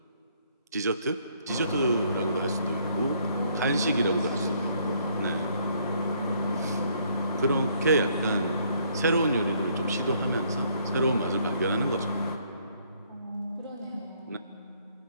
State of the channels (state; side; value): inverted; both; correlation -0.66